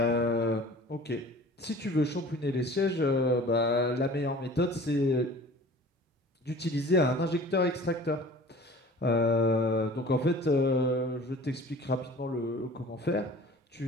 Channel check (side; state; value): both; normal; correlation 0.45